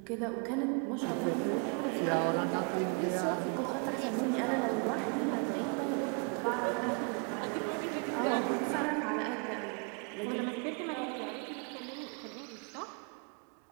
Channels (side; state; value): left; quieter; 36.5 dB